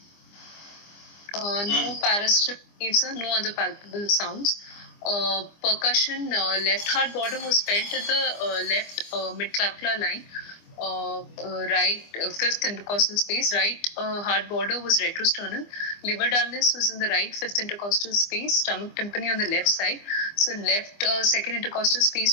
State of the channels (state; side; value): late; right; 25 ms